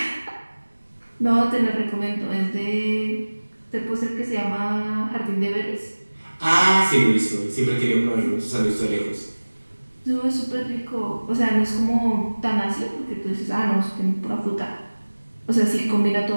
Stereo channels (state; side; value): inverted; both; correlation -1.00